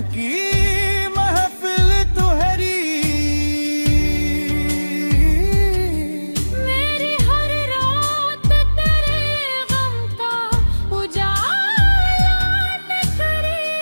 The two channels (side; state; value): both; inverted; correlation -1.00